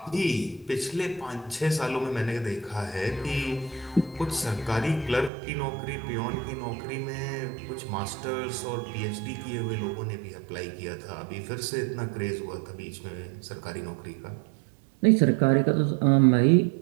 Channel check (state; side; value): drops out; left; at 5.3 s